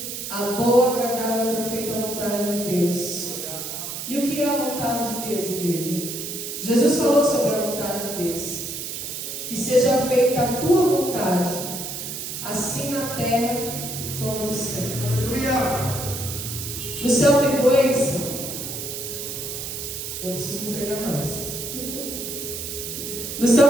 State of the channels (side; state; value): right; noise; hiss, 6 dB below the sound